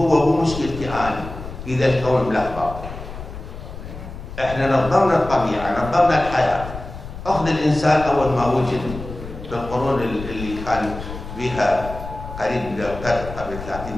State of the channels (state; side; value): noise; left; rumble, 11 dB below the sound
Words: ومشكلتي أنا، إذا الكون ملخبط. إحنا نظمنا الطبيعة، نظمنا الحياة. أخذ الإنسان أول ما وجد في القرون اللي كان بها قريب من القرن قبل 30